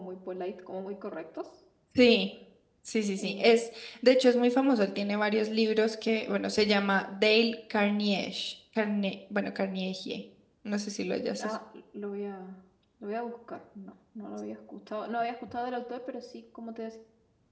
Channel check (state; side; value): identical; both; correlation 1.00